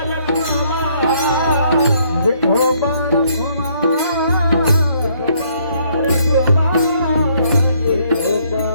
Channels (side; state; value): both; inverted; correlation -0.67